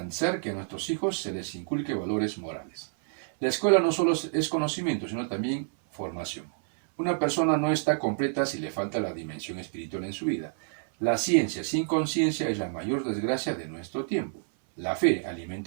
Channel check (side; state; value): left; silent; 59 dB below the other